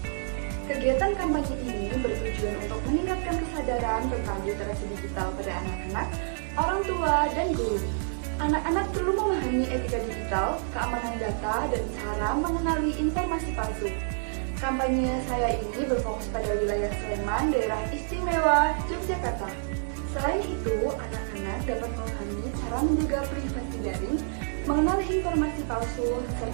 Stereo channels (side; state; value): left; silent; digital silence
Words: Kegiatan kampanye ini bertujuan untuk meningkatkan kesadaran tentang literasi digital pada anak-anak, orang tua, dan guru. Anak-anak perlu memahami etika digital, keamanan data, dan cara mengenali informasi palsu. Kampanye saya ini berfokus pada wilayah Sleman, Daerah Istimewa Yogyakarta. Selain itu, anak-anak dapat memahami cara menjaga privasi daring, mengenali informasi palsu,